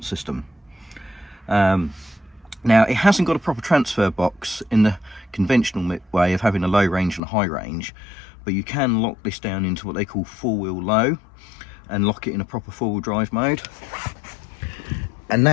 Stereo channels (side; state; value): right; drops out; at 7.2 s